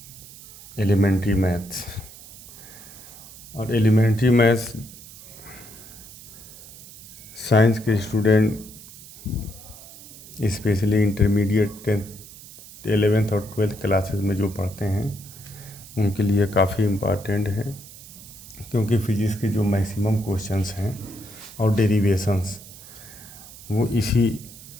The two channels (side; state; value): right; noise; hiss, 17 dB below the sound